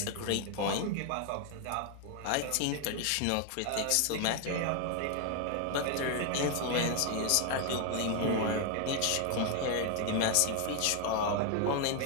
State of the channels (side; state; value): both; different; correlation 0.00